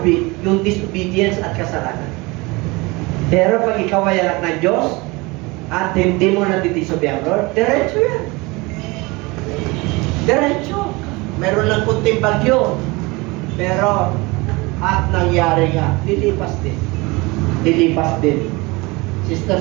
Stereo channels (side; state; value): left; quieter; 24.3 dB